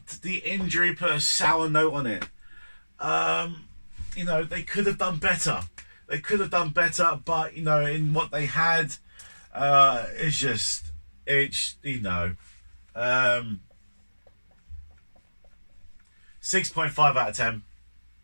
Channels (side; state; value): both; inverted; correlation -1.00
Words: the injury put a sour note on it. They could have done better. But in what they had, it's 6.5 out of 10.